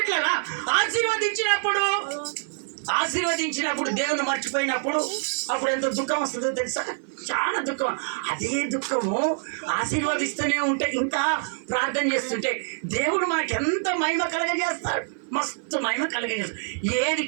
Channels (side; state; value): left; silent; 56 dB below the other